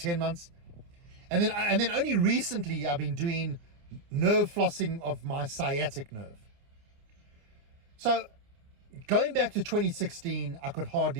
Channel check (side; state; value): left; late; 29 ms